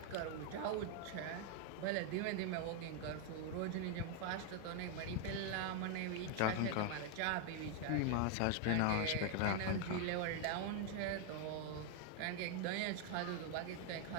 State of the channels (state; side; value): different; both; correlation 0.00